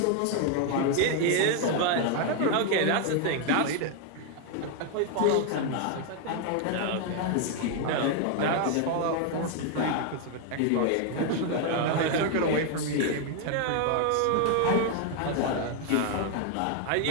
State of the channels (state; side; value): different; both; correlation 0.01